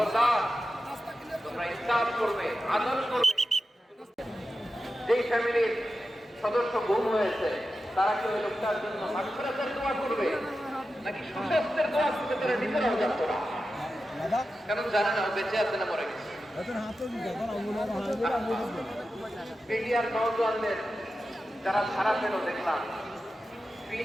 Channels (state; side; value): normal; both; correlation 0.92